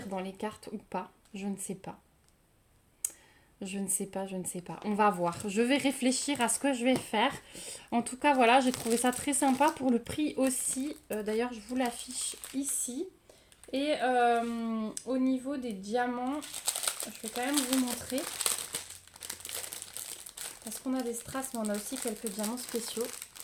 dans les cartes ou pas? Je ne sais pas. Je ne sais pas. On va voir. Je vais réfléchir à ce que je vais faire. En tout cas, voilà, j'ai trouvé ça très sympa pour le prix aussi. D'ailleurs, je vous l'affiche ici. Et au niveau des diamants, je vais quand même vous montrer. Parce qu'on a des strass, mais on a aussi quelques diamants spéciaux.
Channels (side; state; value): both; identical; correlation 1.00